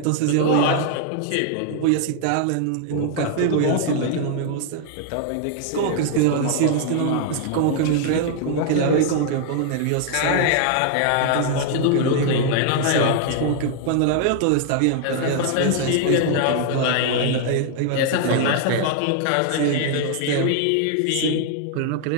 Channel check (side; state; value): both; different; correlation 0.00